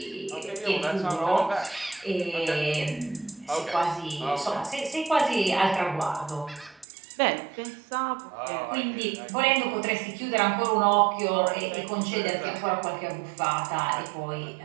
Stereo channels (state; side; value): drops out; left; at 6.9 s